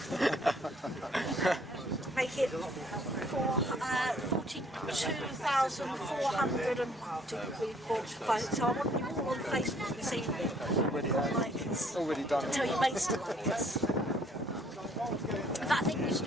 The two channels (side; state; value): both; normal; correlation 0.62